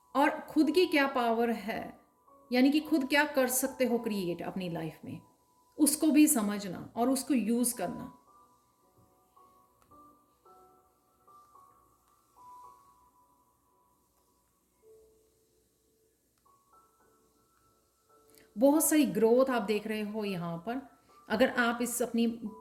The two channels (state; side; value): identical; both; correlation 1.00